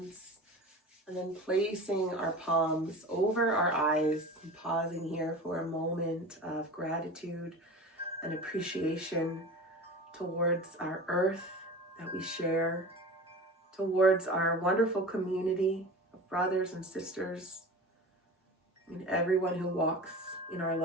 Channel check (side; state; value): both; normal; correlation 0.34